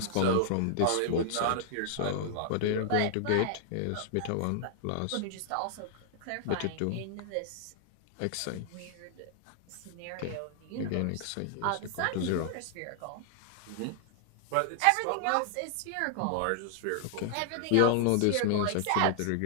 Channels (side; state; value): both; different; correlation -0.01